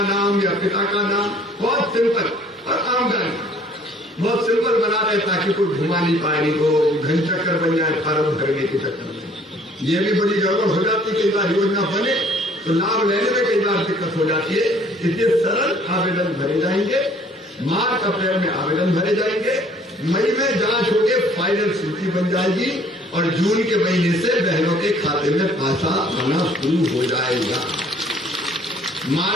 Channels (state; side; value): normal; both; correlation 0.57